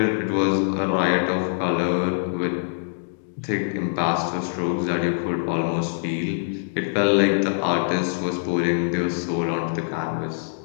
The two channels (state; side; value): silent; right; digital silence